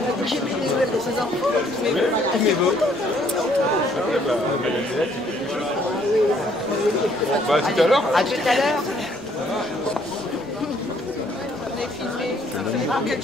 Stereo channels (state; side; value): normal; both; correlation 0.64